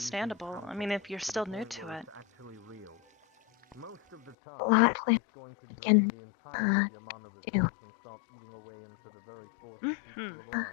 I mean, if you're still new to it. A lot we can do.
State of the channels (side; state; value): right; drops out; at 4.4 s